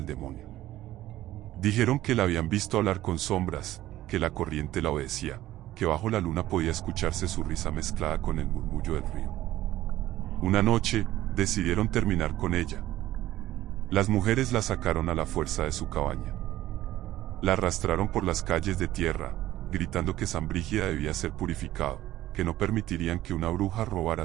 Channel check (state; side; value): quieter; left; 14.7 dB